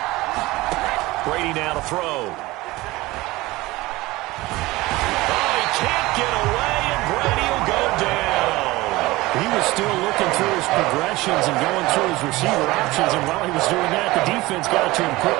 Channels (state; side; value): quieter; left; 19.9 dB